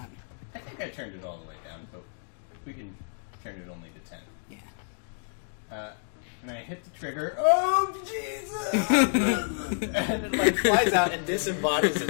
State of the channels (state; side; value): silent; right; digital silence